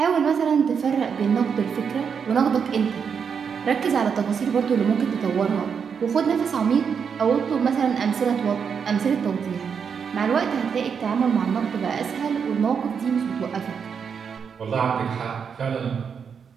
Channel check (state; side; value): quieter; left; 6.6 dB